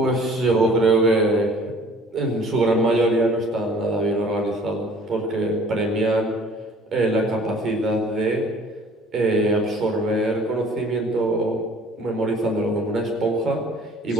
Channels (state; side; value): normal; both; correlation 0.53